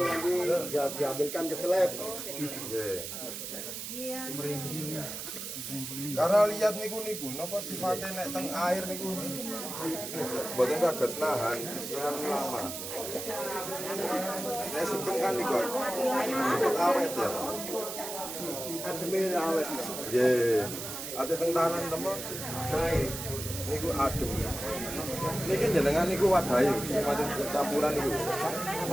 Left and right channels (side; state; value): right; noise; hiss, 7 dB below the sound